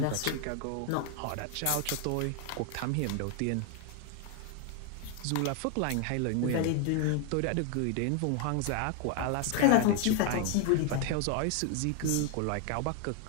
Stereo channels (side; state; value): both; different; correlation 0.00